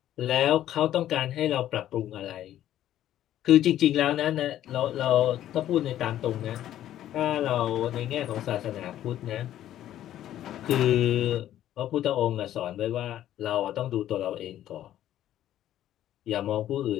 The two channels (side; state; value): right; quieter; 12.2 dB